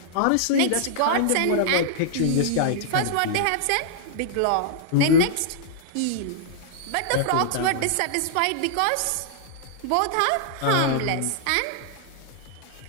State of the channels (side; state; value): both; different; correlation -0.01